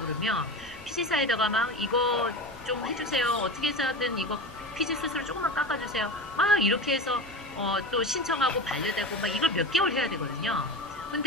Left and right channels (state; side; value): normal; both; correlation 0.27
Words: 그러면 피지사에다가 막 이거 좀 해주세요. 어떻게 해서든 이거 피지 수수료 조금만 깎아주세요. 막 이렇게 해서 또 신청하고 반려되고 막 이걸 몇 개월 해야 되거든요.